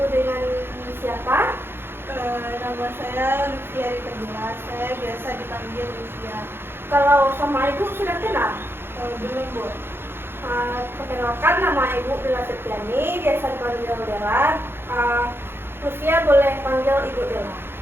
dengan siapa? Nama saya Lutfia Rita. Saya biasa dipanggil Lutfia. Kalau sama Ibu sudah kenal? Belum Bu. Perkenalkan, nama Ibu Dela Septiani, biasa dipanggil Dela. Lutfia boleh panggil Ibu Dela.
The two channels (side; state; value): left; late; 0.11 ms